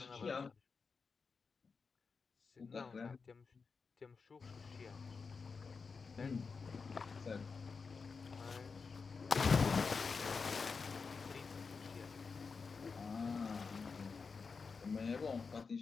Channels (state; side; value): quieter; right; 5.0 dB